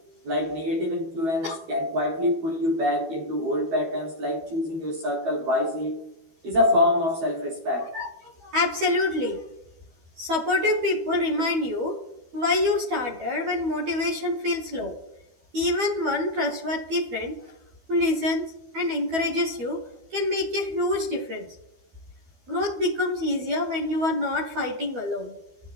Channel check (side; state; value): left; late; 12 ms